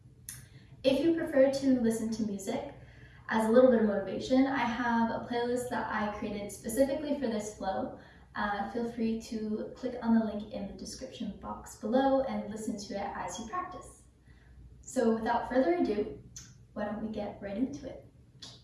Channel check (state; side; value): identical; both; correlation 1.00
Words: If you prefer to listen to music as a little bit of motivation, I have a playlist that I created specifically for this flow. Feel free to click on the link in the description box below and listen to it as you practice. So without further ado, why don't we get right into it?